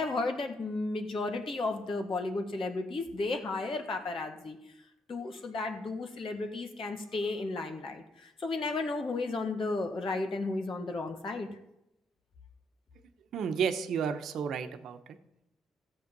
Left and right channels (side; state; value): both; normal; correlation 0.73